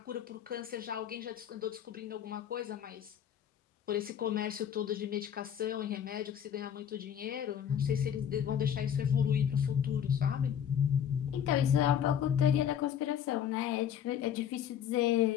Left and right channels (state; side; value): quieter; right; 9.1 dB